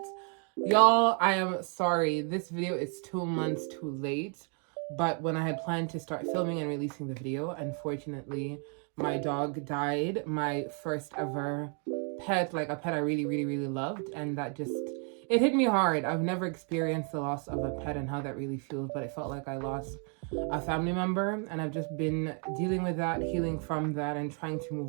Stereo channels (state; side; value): quieter; left; 40.0 dB